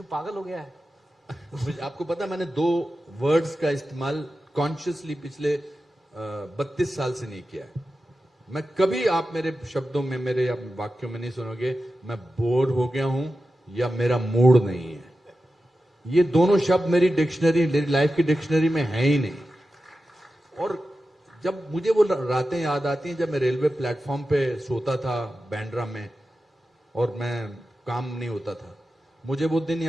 पागल हो गया है. मुझे आपको पता, मैंने 2 वर्ड्स का इस्तेमाल कॉन्शियसली पिछले 32 साल से नहीं किया है. मैं कभी, आप मेरे शब्दों में, मेरे या वाक्यों में नहीं सुनोगे मैं बोर हो गया हूं या मेरा मूड नहीं है. ये दोनों शब्द मेरी डिक्शनरी, मेरी लाइफ की डिक्शनरी में है ही नहीं. और जब मुझे वो रातें याद आती हैं जब मैं रेलवे प्लेटफॉर्म पे सोता था बैंड्रा में और मैं काम नहीं होता था. मुझे वो दिन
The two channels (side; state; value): both; normal; correlation 0.92